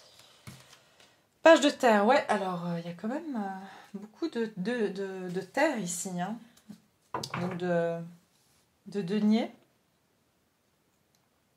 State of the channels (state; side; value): identical; both; correlation 1.00